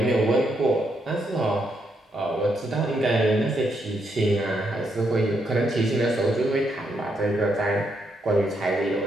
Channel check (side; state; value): both; normal; correlation 0.78